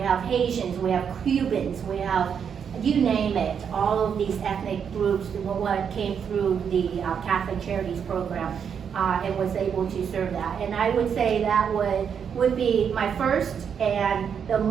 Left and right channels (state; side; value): quieter; left; 7.4 dB